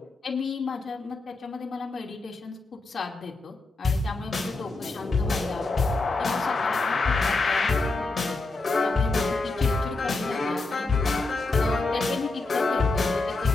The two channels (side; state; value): right; quieter; 3.4 dB